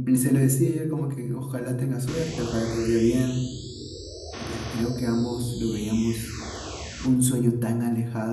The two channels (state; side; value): identical; both; correlation 1.00